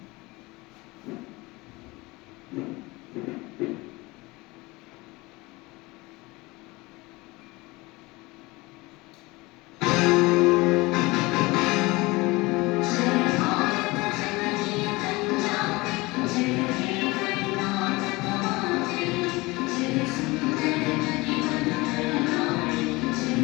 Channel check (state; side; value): quieter; right; 22.7 dB